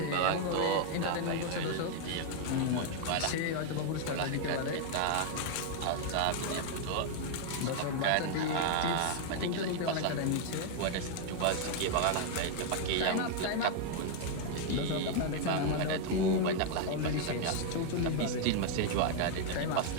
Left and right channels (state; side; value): different; both; correlation 0.00